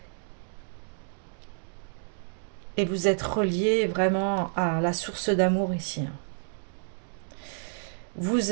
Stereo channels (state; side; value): silent; left; digital silence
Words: Et vous êtes relié vraiment à la source d'amour ici. Vous